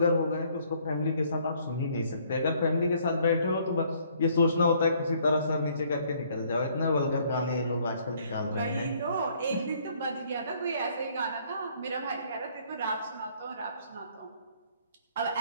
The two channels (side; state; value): both; inverted; correlation -0.63